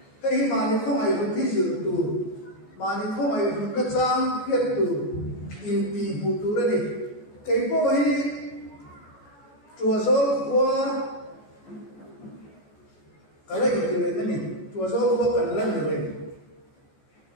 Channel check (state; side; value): late; right; 14 ms